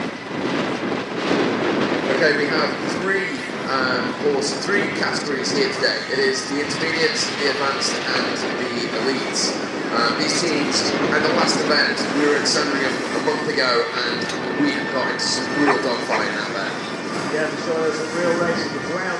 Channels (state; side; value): identical; both; correlation 1.00